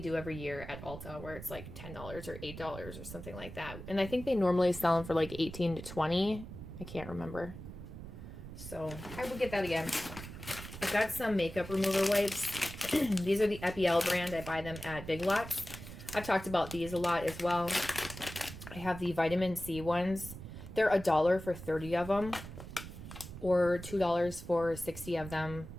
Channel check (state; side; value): noise; right; rumble, 12 dB below the sound